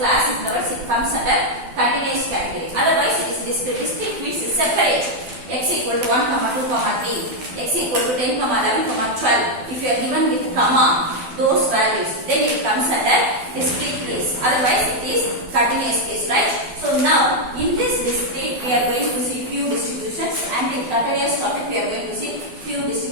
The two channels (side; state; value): left; late; 12 ms